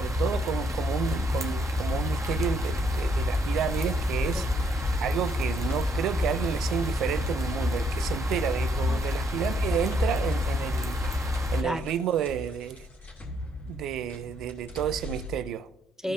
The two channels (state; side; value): normal; both; correlation 0.70